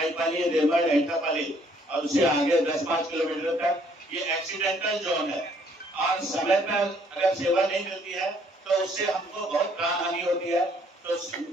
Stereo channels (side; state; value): both; normal; correlation 0.64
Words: रेमड़, एटापाली और उससे आगे 10-5 किलोमीटर तक ये एक्सीडेंटल जोन है और समय पर अगर सेवा नहीं मिलती है तो उससे हमको बहुत प्राण हानि होती है। तो